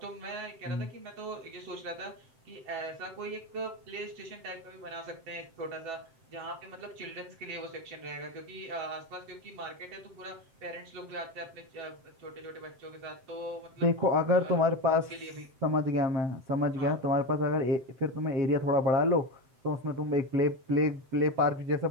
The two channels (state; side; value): late; left; 7.7 ms